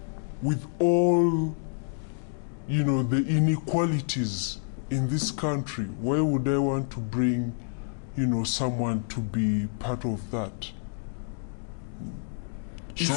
with all, the inequalities in this country, why would I want to bring, someone to be part of that?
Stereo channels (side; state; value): right; silent; digital silence